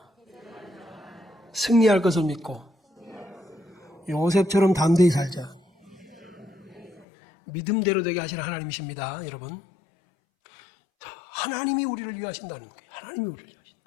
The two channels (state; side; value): drops out; right; at 7.1 s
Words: 승리할 것을 믿고 요셉처럼 담대히 살자. 믿음대로 되게 하시는 하나님이십니다, 여러분. 자, 하나님이 우리를 위하신다는 거예요. 하나님이 우리를